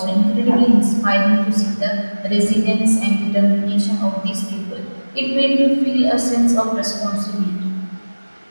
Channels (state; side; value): inverted; both; correlation -1.00